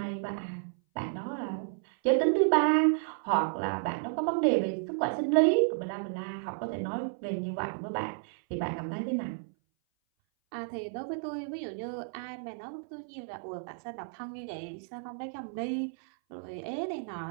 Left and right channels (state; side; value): silent; left; 57 dB below the other